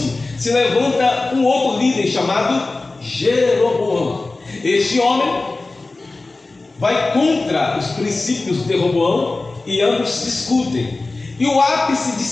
se levanta um outro líder chamado Jeroboão. Este homem vai contra os princípios de Roboão e ambos discutem. E o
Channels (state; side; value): quieter; right; 3.3 dB